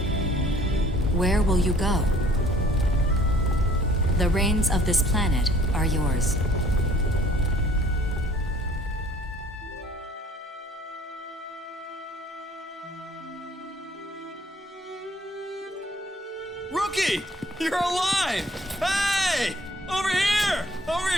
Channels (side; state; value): both; normal; correlation 0.56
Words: Where will you go? The reins of this planet are yours. Rookie! You're alive! Hey! Over here! Over